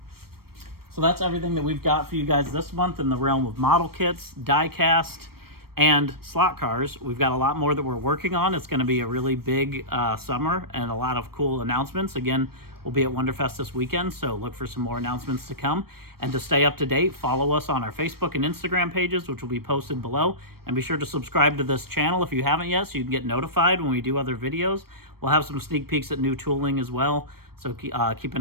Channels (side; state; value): left; late; 0.94 ms